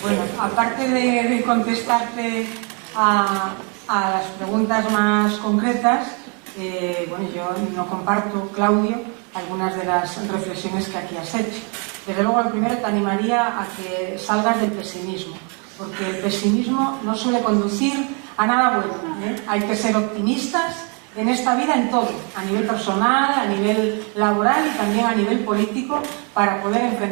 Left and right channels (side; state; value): left; quieter; 36.7 dB